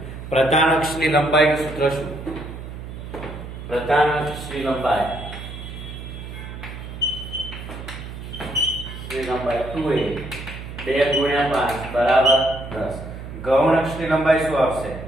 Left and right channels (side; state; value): right; noise; hum, 10 dB below the sound